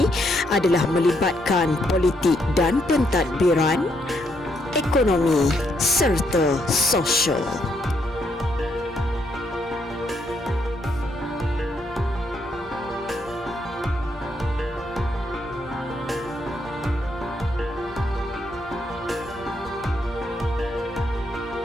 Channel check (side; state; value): both; normal; correlation 0.75